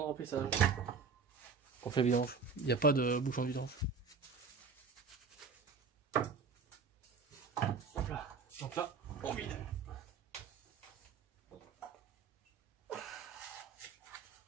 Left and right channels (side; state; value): left; quieter; 5.1 dB